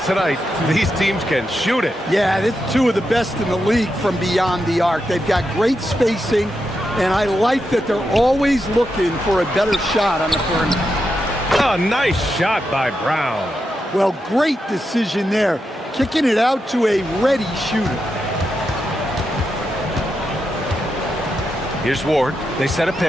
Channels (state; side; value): normal; both; correlation 0.86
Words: tonight, these teams can shoot it. Yeah, it's two of the best in the league from beyond the arc. They've got great spacing, and I like that they're always looking for a better shot on the perimeter. A nice shot by Brown. Well, great decision there. Kicking it out to a ready shooter. Here's Ward. They set a